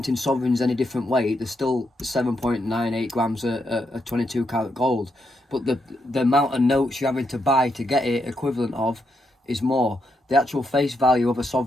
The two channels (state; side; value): normal; both; correlation 0.80